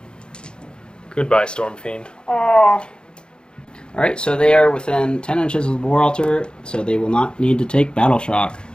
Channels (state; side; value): late; right; 0.050 ms